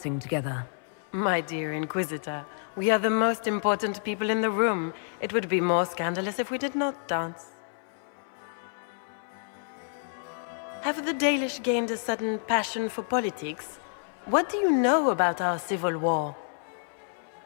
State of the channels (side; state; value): right; silent; 59 dB below the other